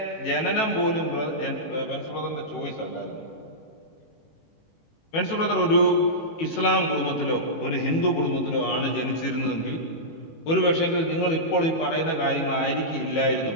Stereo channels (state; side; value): late; right; 18 ms